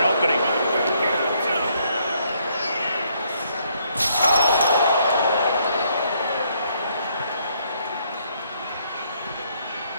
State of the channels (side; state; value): both; inverted; correlation -0.70